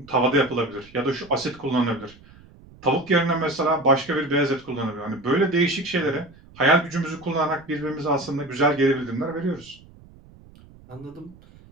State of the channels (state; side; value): noise; right; rumble, 24 dB below the sound